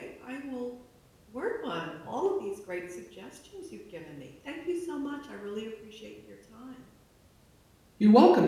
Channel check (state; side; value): identical; both; correlation 1.00